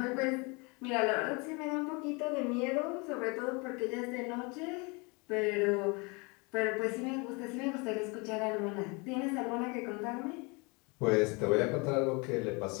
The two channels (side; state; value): right; quieter; 29.2 dB